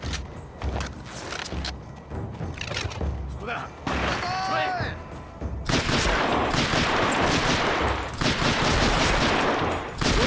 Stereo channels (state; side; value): identical; both; correlation 1.00